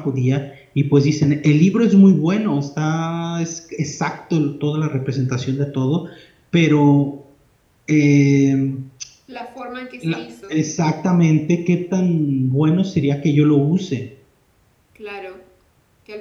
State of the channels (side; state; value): both; identical; correlation 1.00